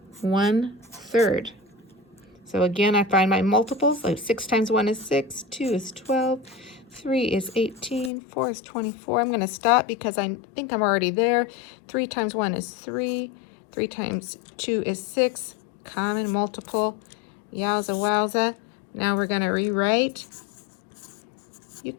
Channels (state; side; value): drops out; right; at 8.1 s